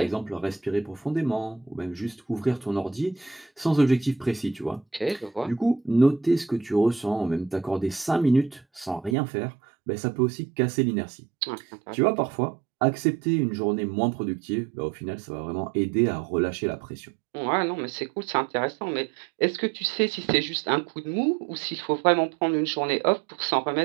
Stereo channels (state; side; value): drops out; left; at 9.2 s